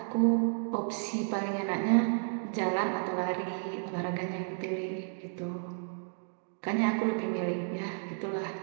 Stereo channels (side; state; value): left; silent; 56 dB below the other